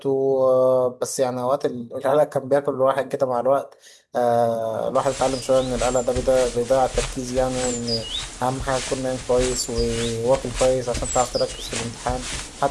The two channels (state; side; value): identical; both; correlation 1.00